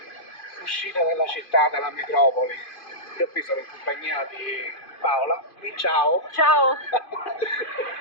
uscita dalla città, dalla metropoli. Io qui sono in compagnia di Paola, di ciao. Ciao!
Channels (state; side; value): late; right; 2.5 ms